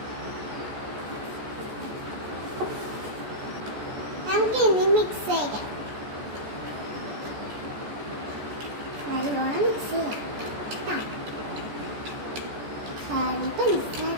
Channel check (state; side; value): late; left; 14 ms